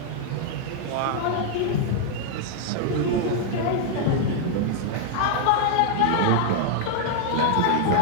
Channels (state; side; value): different; both; correlation -0.01